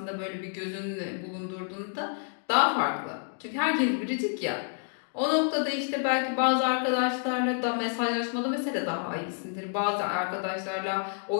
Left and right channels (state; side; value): silent; right; 59 dB below the other